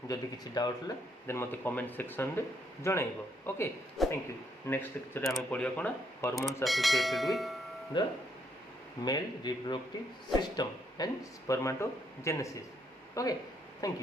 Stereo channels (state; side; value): normal; both; correlation 0.73